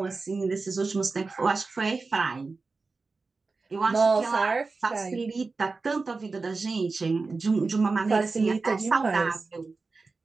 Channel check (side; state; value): left; quieter; 4.0 dB